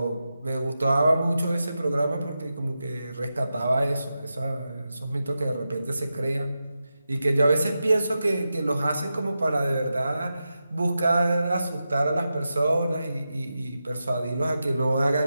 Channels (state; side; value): inverted; both; correlation -0.90